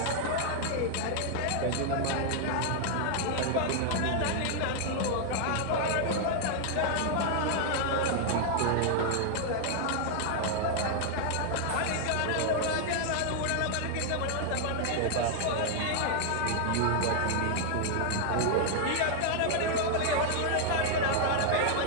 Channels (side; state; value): both; different; correlation 0.00